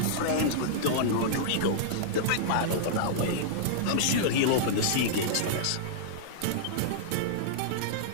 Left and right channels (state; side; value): different; both; correlation -0.02